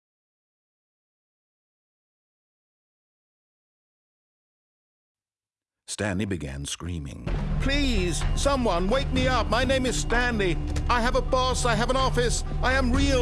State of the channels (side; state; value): both; identical; correlation 1.00